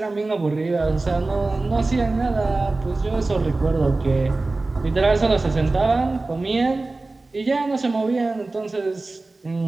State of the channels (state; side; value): quieter; left; 3.3 dB